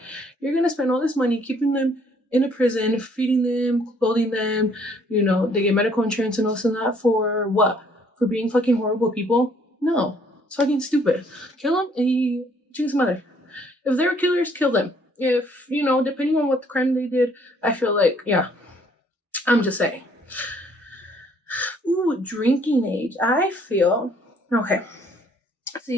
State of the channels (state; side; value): normal; both; correlation 0.63